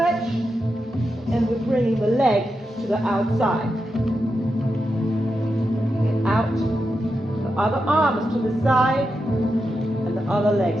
and we're bringing the leg to the outside. Get out. Other arm is to the side, and the other leg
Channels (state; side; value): normal; both; correlation 0.87